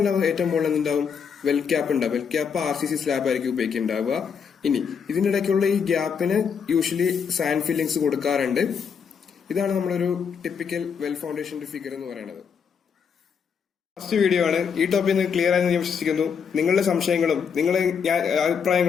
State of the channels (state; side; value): quieter; right; 6.6 dB